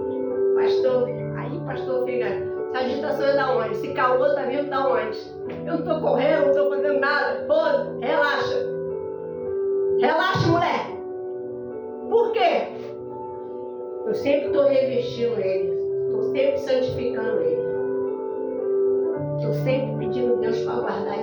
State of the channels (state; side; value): identical; both; correlation 1.00